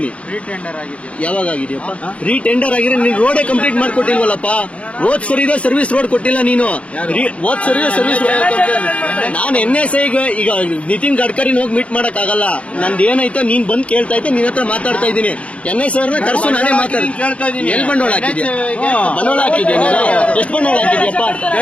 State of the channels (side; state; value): right; late; 0.063 ms